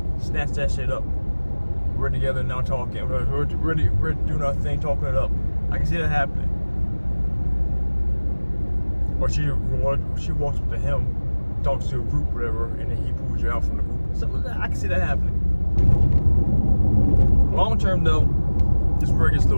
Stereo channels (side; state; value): both; inverted; correlation -1.00